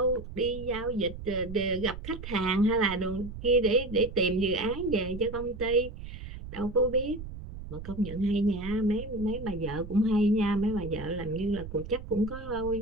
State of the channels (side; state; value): right; noise; rumble, 11 dB below the sound